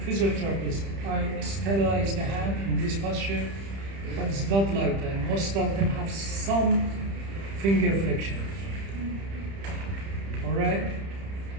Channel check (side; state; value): left; late; 30 ms